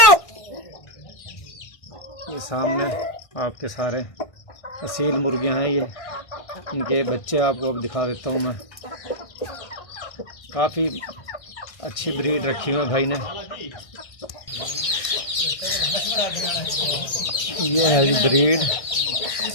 ये सामने आपके सारे असील मुर्गियाँ हैं, ये इनके बच्चे आपको अब दिखा देता हूँ मैं। काफ़ी अच्छी ब्रीड रखी हुई है भाई ने। ये है जी ब्रीड,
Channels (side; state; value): right; late; 1.6 ms